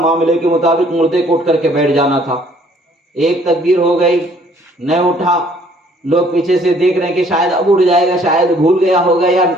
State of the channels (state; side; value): normal; both; correlation 0.60